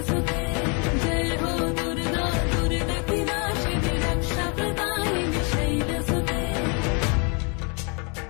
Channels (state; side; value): quieter; right; 34.9 dB